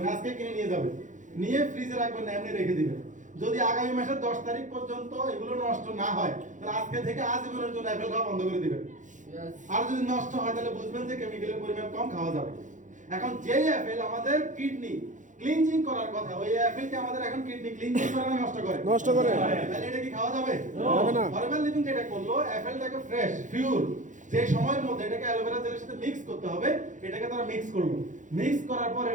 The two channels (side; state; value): left; late; 0.36 ms